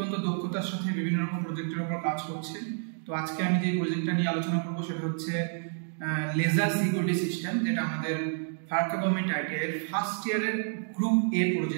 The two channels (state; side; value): silent; left; 58 dB below the other